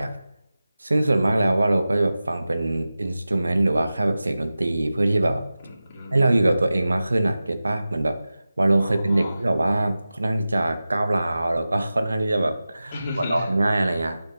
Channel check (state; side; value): inverted; both; correlation -0.95